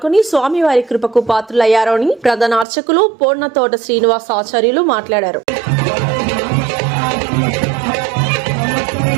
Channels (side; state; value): left; drops out; at 2.7 s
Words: స్వామివారి కృపకు పాత్రులయ్యారని ప్రధాన అర్చకులు పూర్ణతోట శ్రీనివాస్ ఆచార్యులు మాట్లాడారు.